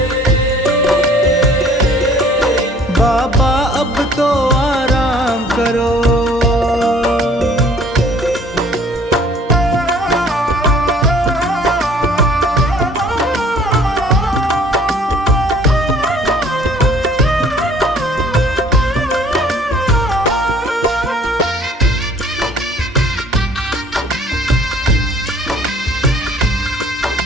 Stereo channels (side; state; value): both; normal; correlation 0.55